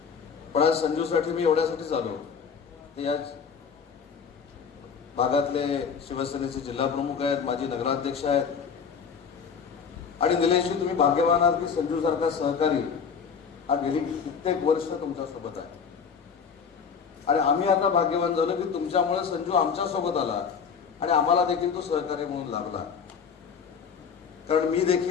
पण आज संजूसाठी मी एवढ्यासाठीच आलो की या भागातले शिवसेनेचे जिल्हा प्रमुख आहेत, माजी नगराध्यक्ष आहेत, आणि निलेशजी, तुम्ही भाग्यवान आहात की संजू सारखा सहकारी हा गेली कित्येक वर्ष तुमच्या सोबत आहे. आणि आम्ही आता भाग्यवान झालो की तुमच्यामुळे संजू आमच्या सोबत आला आणि आम्हाला देखील तो सहकारी म्हणून लागला. कारण मी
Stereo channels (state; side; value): quieter; right; 6.4 dB